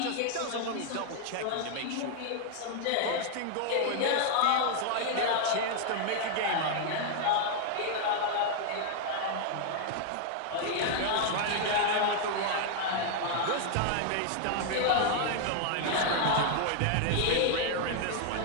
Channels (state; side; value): different; both; correlation 0.00